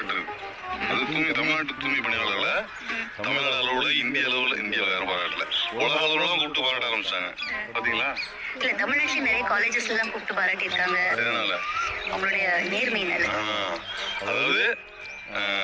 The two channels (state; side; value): identical; both; correlation 1.00